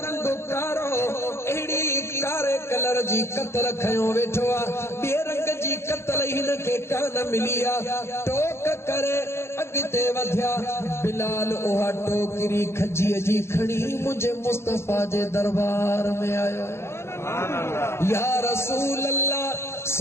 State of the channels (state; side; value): late; right; 0.12 ms